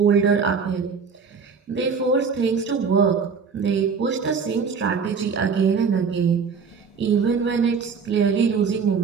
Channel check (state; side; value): quieter; left; 5.7 dB